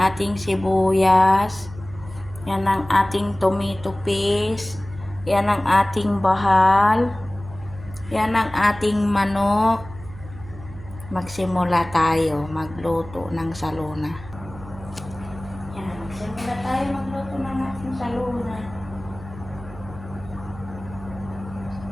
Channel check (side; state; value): right; noise; hum, 16 dB below the sound